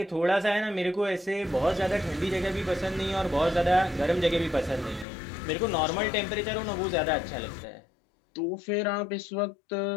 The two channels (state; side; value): drops out; right; at 5.1 s